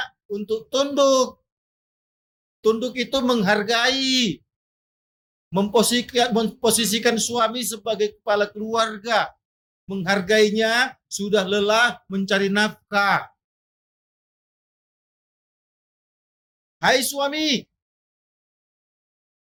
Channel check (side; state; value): both; identical; correlation 1.00